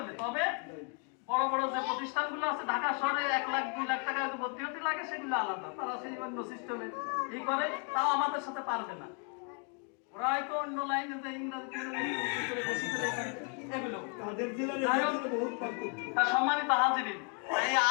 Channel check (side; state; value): right; quieter; 39.4 dB